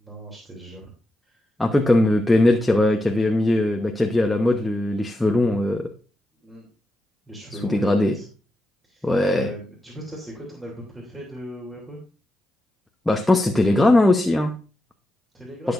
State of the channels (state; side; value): normal; both; correlation 0.88